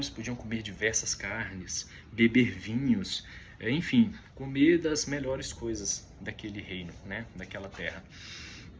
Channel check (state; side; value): identical; both; correlation 1.00